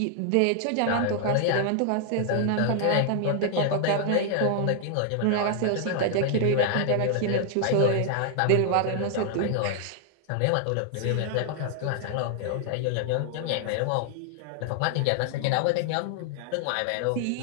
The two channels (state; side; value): different; both; correlation 0.00